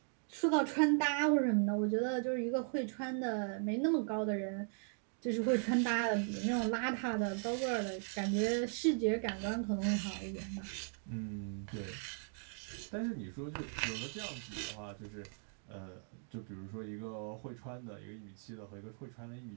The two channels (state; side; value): silent; left; 52 dB below the other